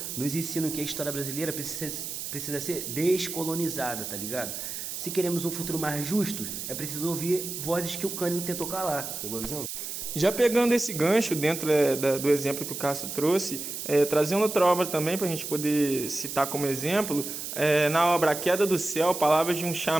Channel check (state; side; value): noise; right; hiss, 6 dB below the sound